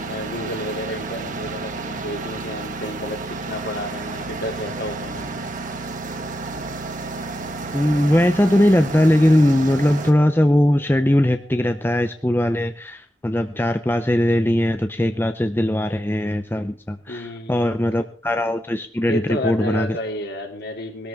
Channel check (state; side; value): normal; both; correlation 0.87